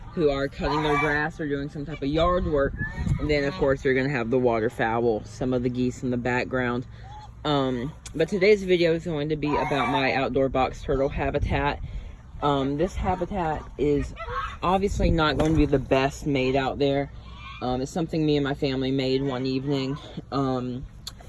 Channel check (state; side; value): identical; both; correlation 1.00